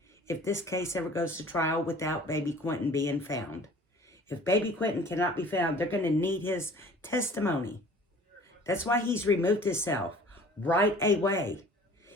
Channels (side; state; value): both; normal; correlation 0.49